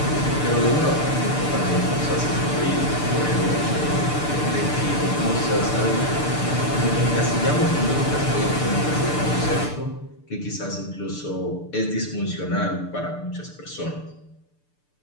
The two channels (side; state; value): right; late; 6.8 ms